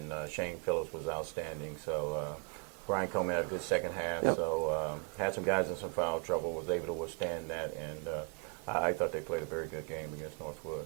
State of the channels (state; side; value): quieter; left; 37.9 dB